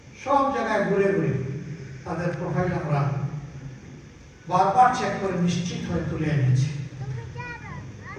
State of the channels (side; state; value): both; identical; correlation 1.00